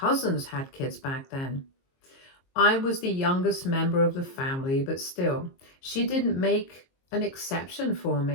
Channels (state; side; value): late; right; 22 ms